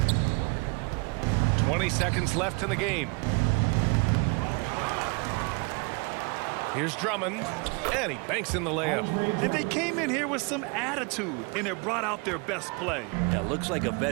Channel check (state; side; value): quieter; left; 30.7 dB